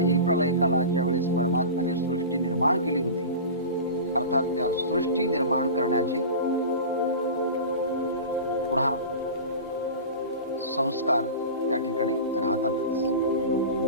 प्रलय कालाच्या वेळेस परमात्म्याने सृष्टी निर्माण केली होती. अर्थात त्या सृष्टी निर्माण करण्याचे पुन्हा संस्कार त्या ठिकाणी राहतातच.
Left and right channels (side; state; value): both; inverted; correlation -0.31